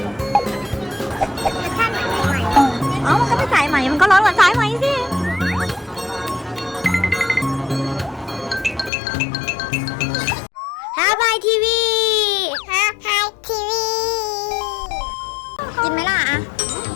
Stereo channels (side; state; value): right; drops out; at 8.9 s